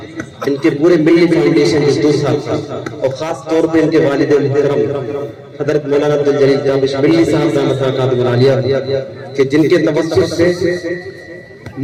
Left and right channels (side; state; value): both; identical; correlation 1.00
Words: इनके पूरे मिल्ली फाउंडेशन के 2 साल, और खास तौर पे इनके वालिद मुहतरम हज़रत मौलाना अब्दुल जलील ताबिश मिल्ली साहब के जिनके तवस्सुस से